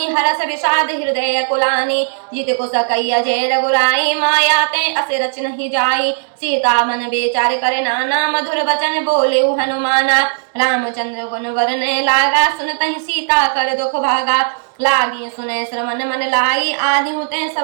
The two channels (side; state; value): left; silent; digital silence